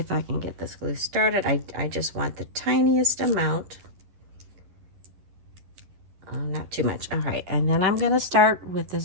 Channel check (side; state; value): left; late; 11 ms